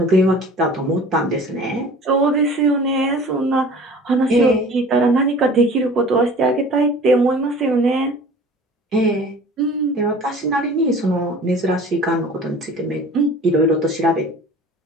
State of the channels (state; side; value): normal; both; correlation 0.44